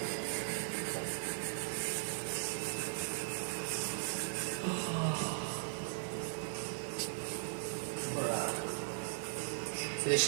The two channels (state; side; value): silent; left; digital silence